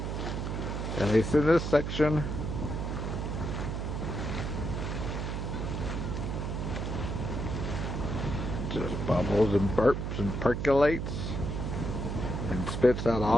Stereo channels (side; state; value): right; noise; hum, 3 dB below the sound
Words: at least in this section. Just bubbles and burps and percolates and spits out